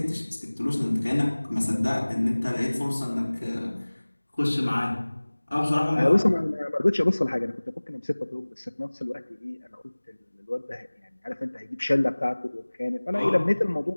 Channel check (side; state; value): both; inverted; correlation -1.00